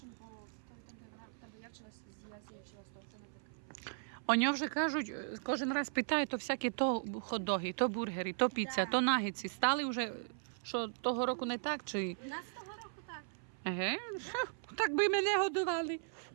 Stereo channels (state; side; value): silent; left; 53 dB below the other